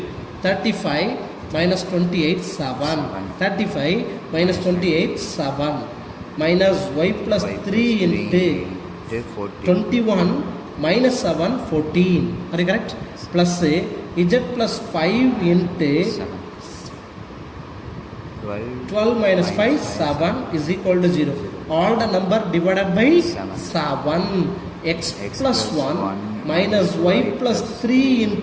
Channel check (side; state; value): both; identical; correlation 1.00